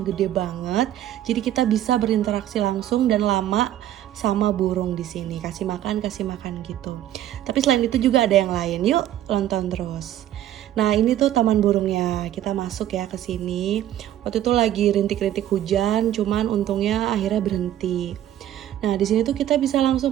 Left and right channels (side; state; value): left; quieter; 12.3 dB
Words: gede banget. Jadi kita bisa berinteraksi langsung dan lama sama burung di sini. Kasih makan gitu. Tapi selain itu juga ada yang lain. Yuk, nonton terus. Nah, ini tuh taman burungnya. Kita masuk ya ke sini. Waktu itu lagi rintik-rintik hujan, cuman untungnya akhirnya berhenti. Nah, di sini tuh kita bisa